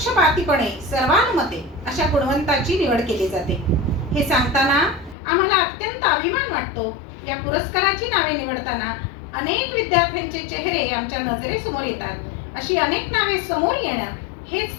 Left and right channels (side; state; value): right; drops out; at 5.2 s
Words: सर्वानुमते अशा गुणवंताची निवड केली जाते. हे सांगताना आम्हाला अत्यंत अभिमान वाटतो. या पुरस्काराची नावे निवडताना अनेक विद्यार्थ्यांचे चेहरे आमच्या नजरेसमोर येतात. अशी अनेक नावे समोर येणं हेच